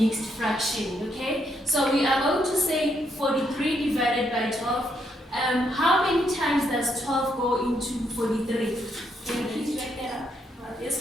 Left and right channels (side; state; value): both; normal; correlation 0.76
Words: fraction, okay? So we are going to say 43 divided by 12. How many times does 12 go into 43? Can you please write that up? Yes,